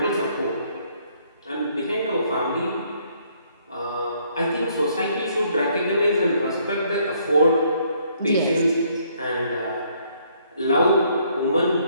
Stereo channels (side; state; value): both; inverted; correlation -0.67